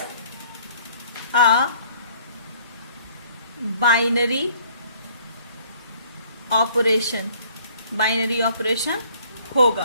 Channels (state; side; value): inverted; both; correlation -0.58